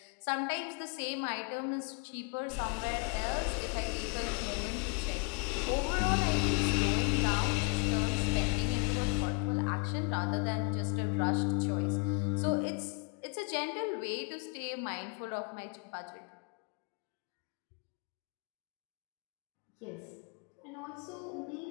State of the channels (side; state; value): right; quieter; 33.6 dB